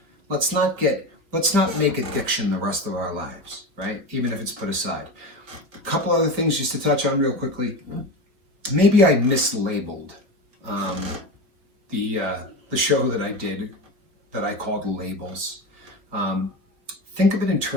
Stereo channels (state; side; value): late; left; 5.0 ms